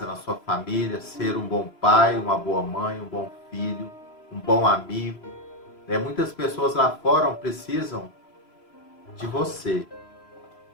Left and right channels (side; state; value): right; late; 3.0 ms